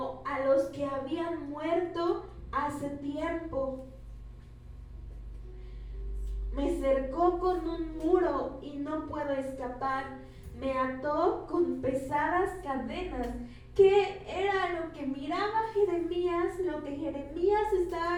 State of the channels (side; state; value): both; identical; correlation 1.00